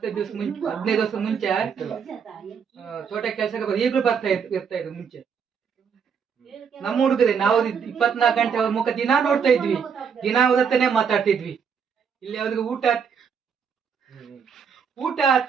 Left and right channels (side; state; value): left; quieter; 6.7 dB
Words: ದಿವಸ ಮುಂಚೆ 15 ದಿವಸ ಮುಂಚೆ ತೋಟ ಕೆಲಸಕ್ಕೆ ಈಗಲೂ ಇರ್ತಾ ಇದ್ರು ಮುಂಚೆ. ನಮ್ಮ ಹುಡುಗದೆ ನಾವು 24 ಗಂಟೆ ಅವ್ರ ಮುಖ ದಿನಾ ನೋಡ್ತಾ ಇದ್ವಿ, ದಿನಾ ಅವ್ರತ್ತನೇ ಮಾತಾಡ್ತಿದ್ವಿ. ಇಲ್ಲಿ ಅವ್ರಿಗೆ ಊಟ